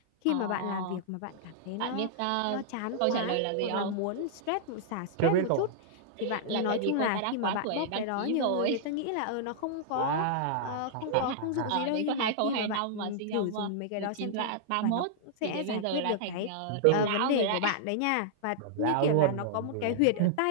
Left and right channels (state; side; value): different; both; correlation -0.01